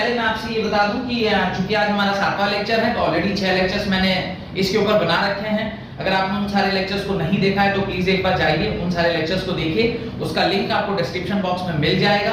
मैं आपसे ये बता दूं कि चूंकि आज हमारा 7वां लेक्चर है तो ऑलरेडी 6 लेक्चर्स मैंने इसके ऊपर बना रखे हैं। अगर आपने उन सारे लेक्चर्स को नहीं देखा है तो प्लीज एक बार जाइए, उन सारे लेक्चर्स को देखिए, उसका लिंक आपको डिस्क्रिप्शन बॉक्स में मिल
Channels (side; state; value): both; identical; correlation 1.00